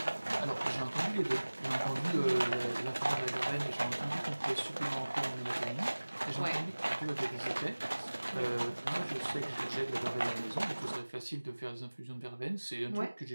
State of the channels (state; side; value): inverted; both; correlation -1.00